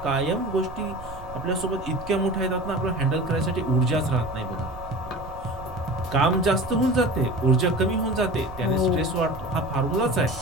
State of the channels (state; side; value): noise; right; rumble, 14 dB below the sound